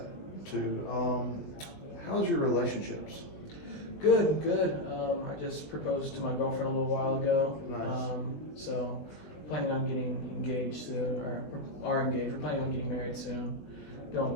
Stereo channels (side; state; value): right; late; 20 ms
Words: too. How's your relationships? Good, good. I just proposed to my girlfriend a little while ago. Nice. So planning on getting engaged soon, or are engaged. We're planning on getting married soon.